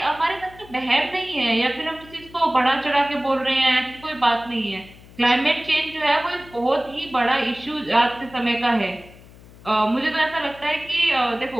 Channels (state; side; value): noise; left; hum, 22 dB below the sound